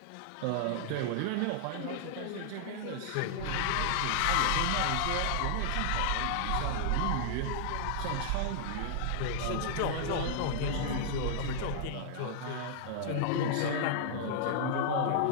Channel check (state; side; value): different; both; correlation -0.01